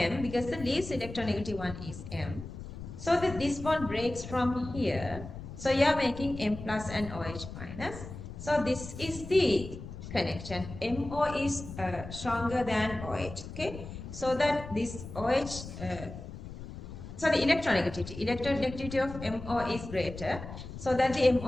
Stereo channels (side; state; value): left; noise; rumble, 11 dB below the sound